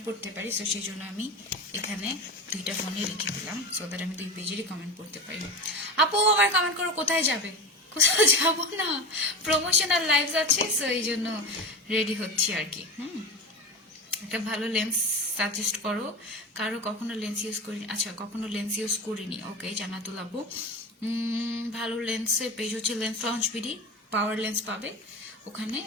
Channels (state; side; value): normal; both; correlation 0.26